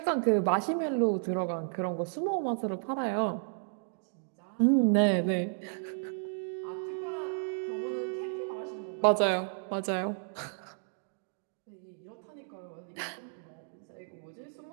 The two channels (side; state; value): left; silent; digital silence